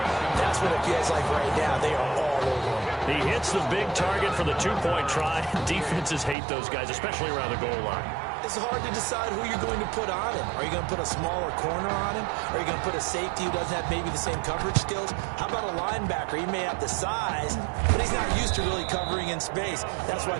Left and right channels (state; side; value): drops out; left; at 6.4 s